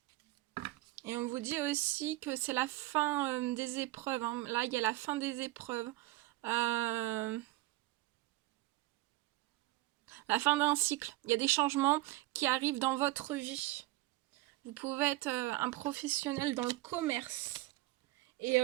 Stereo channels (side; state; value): left; quieter; 18.8 dB